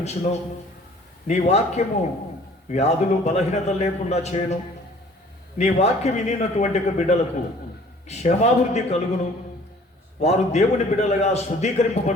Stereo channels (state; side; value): normal; both; correlation 0.53